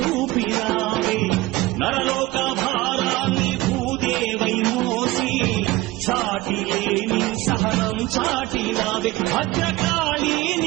నరలోక భారాన్ని భూదేవై మోసి చాటి లేని సహనం చాటినావే. భద్రకాళి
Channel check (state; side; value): quieter; left; 18.9 dB